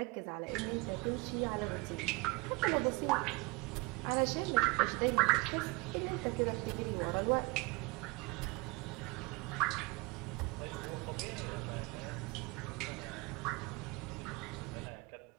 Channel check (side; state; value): left; quieter; 25.7 dB